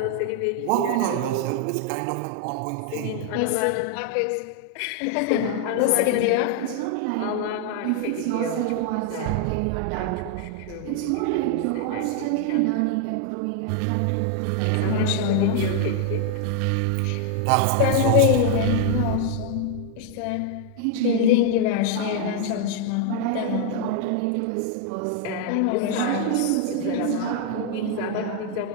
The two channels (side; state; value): both; different; correlation 0.00